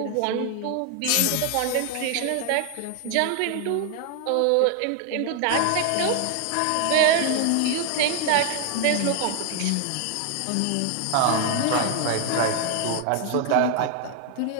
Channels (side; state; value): both; different; correlation 0.00